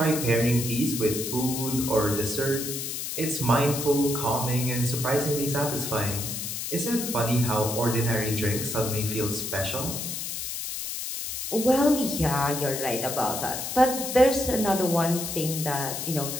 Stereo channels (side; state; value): left; noise; hiss, 5 dB below the sound